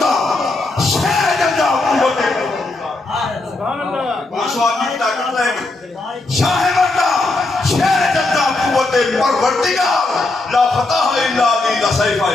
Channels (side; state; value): right; quieter; 3.1 dB